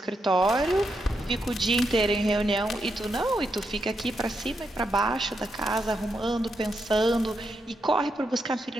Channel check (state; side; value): normal; both; correlation 0.82